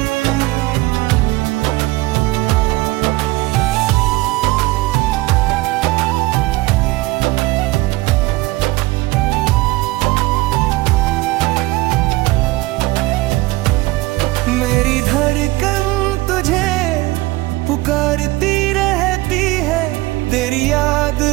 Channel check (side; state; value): left; quieter; 20.0 dB